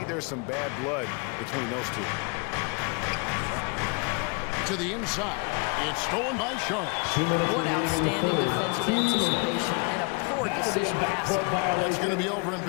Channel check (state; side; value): quieter; right; 31.5 dB